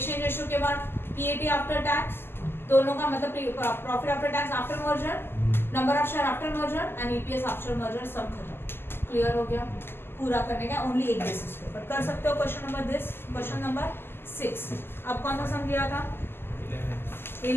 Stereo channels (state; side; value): late; right; 0.11 ms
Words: रेशियो के बाद PAT आफ्टर टैक्स, दोनों का मतलब profit after tax after merger, number of share after merger and EPS after merger. सब खत्म. क्लियर हो गया? पूरा करने का ओनली एक बेसिस पे पर कर सकते हो. Question number this, question number 6. अब कौन सा सम दिया था?